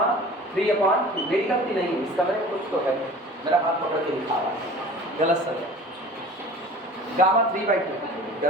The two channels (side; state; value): both; normal; correlation 0.42